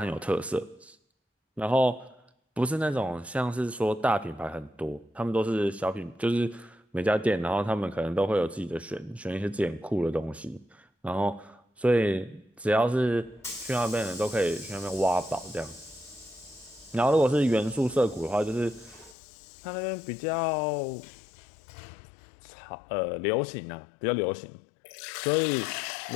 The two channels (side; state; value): right; drops out; at 19.2 s